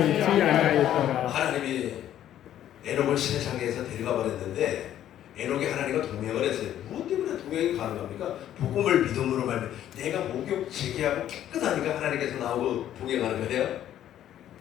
아니하였더라. 하나님이 에녹을 세상에서 데려가 버렸는데 에녹이 하나님과 동행을 했어요. 무엇 때문에 동행이 가능합니까? 복음을 믿음으로 말면 내가 목욕 재개하고 깨끗하니까 하나님께서 나오고 동행하는 거예요?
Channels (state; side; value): quieter; right; 11.5 dB